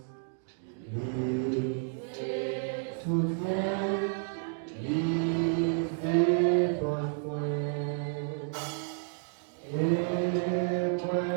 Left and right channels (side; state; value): left; silent; digital silence